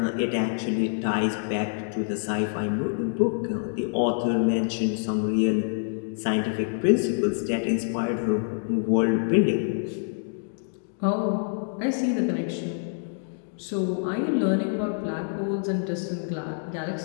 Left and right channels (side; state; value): right; silent; digital silence